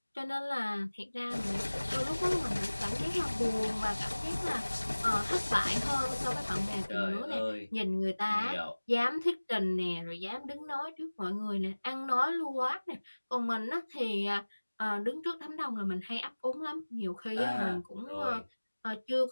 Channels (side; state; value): both; inverted; correlation -1.00